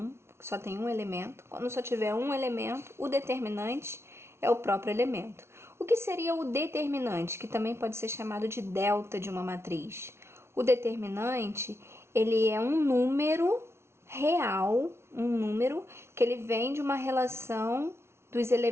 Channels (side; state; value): left; late; 0.12 ms